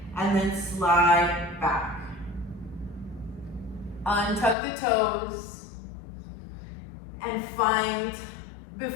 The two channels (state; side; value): drops out; right; at 4.5 s